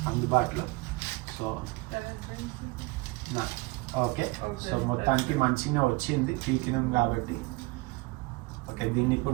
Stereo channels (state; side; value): quieter; left; 23.8 dB